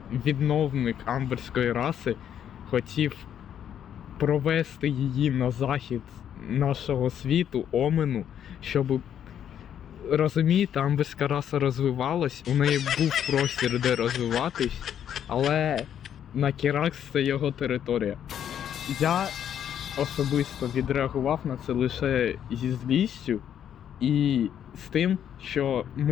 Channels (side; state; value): right; quieter; 9.5 dB